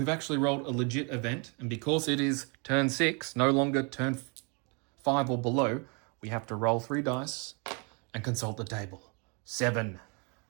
actually rolled a legit event, and because it is turn 6, no longer turn 5 or below, we have to roll 3 dice and consult the table. 7.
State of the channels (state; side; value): quieter; left; 34.1 dB